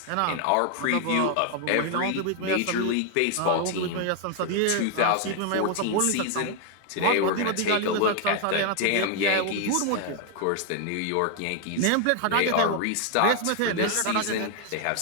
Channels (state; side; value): different; both; correlation 0.00